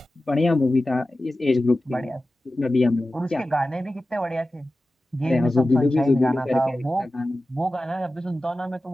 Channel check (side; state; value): both; normal; correlation 0.95